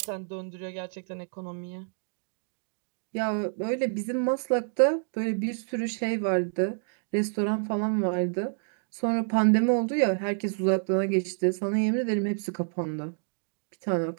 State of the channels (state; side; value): silent; left; digital silence